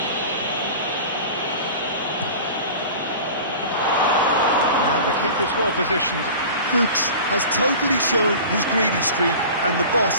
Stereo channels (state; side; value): inverted; both; correlation -0.38